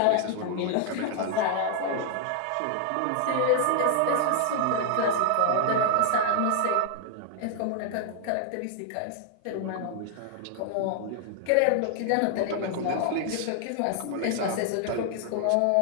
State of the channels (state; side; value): different; both; correlation 0.00